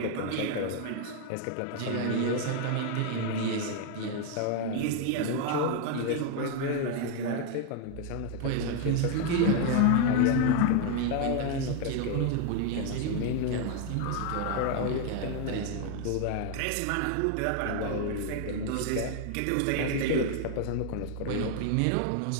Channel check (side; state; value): both; different; correlation 0.00